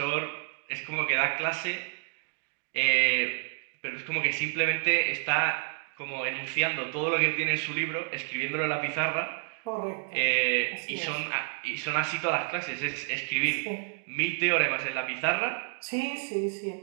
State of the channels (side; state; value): left; silent; 58 dB below the other